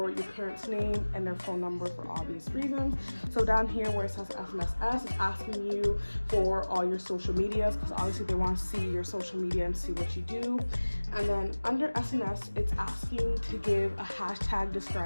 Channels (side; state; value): both; inverted; correlation -1.00